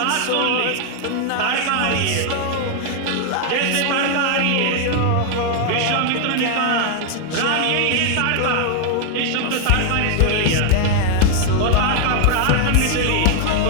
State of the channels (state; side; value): different; both; correlation 0.00